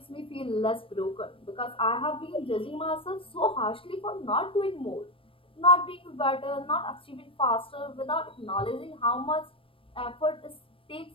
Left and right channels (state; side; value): late; right; 0.26 ms